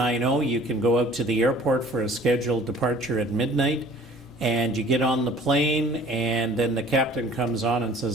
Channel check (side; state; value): both; normal; correlation 0.49